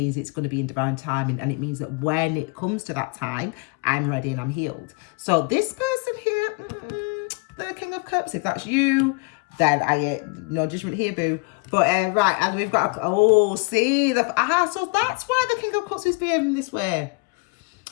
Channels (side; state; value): right; quieter; 30.2 dB